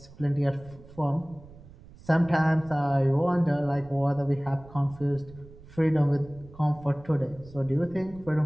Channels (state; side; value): noise; right; rumble, 20 dB below the sound